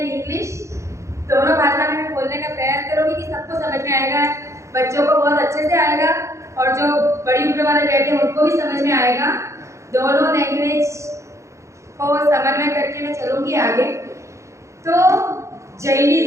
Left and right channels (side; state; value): left; late; 0.14 ms